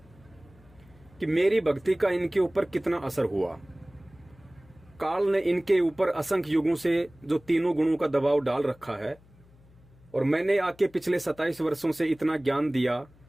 कि मेरी भक्ति का इनके ऊपर कितना असर हुआ। काल ने इनके ऊपर असंख्य युगों से जो तीनों गुणों का दबाव डाल रखा है, और मैंने आके पिछले 27 वर्षों से इतना ज्ञान दिया,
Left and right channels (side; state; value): left; noise; hum, 27 dB below the sound